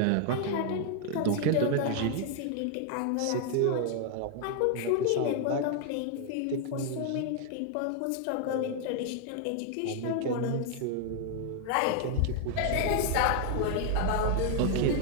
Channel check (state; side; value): different; both; correlation 0.00